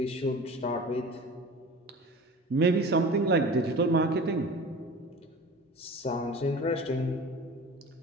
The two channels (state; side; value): normal; both; correlation 0.38